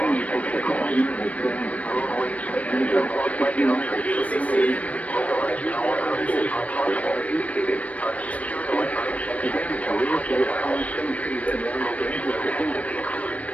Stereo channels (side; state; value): right; late; 0.067 ms